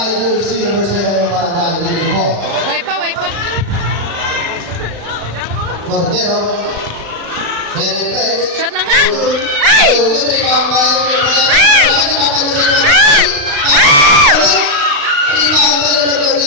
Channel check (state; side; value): late; left; 35 ms